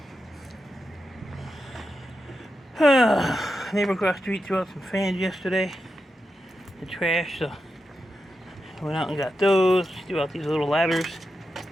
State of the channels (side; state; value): both; normal; correlation 0.88